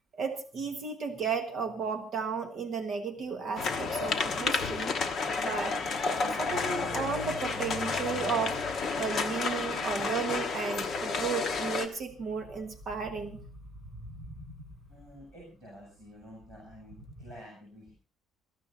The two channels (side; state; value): both; normal; correlation 0.58